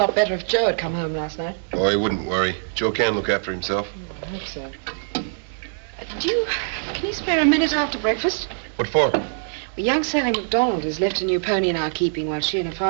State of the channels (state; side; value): silent; left; digital silence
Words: better if Joe had come home last night. Oh, he wouldn't worry. Joe can look after himself. I hope so. Can you spare a minute after breakfast? What for? Well, young Sally MacDonald has left a new pony in our keeping while she and her